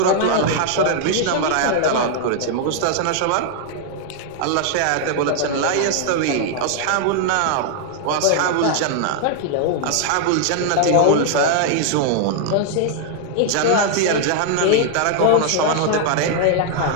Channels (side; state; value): both; different; correlation 0.00